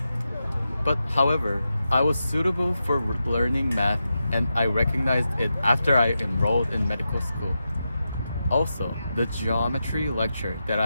But however, I was suitable for learning math and I recognized it after I enrolled in medical school. Also, the geometry lecture that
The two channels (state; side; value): inverted; both; correlation -0.89